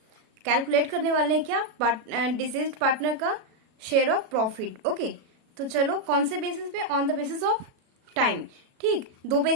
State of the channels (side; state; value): left; late; 36 ms